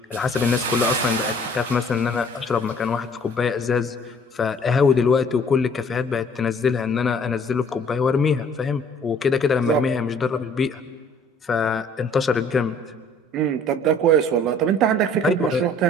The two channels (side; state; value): both; normal; correlation 0.55